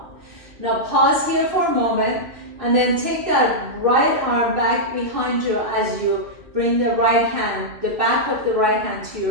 Now pause here for a moment, and then take that right arm back behind you as you bring the right hand, the back of the right hand to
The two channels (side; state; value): left; late; 2.6 ms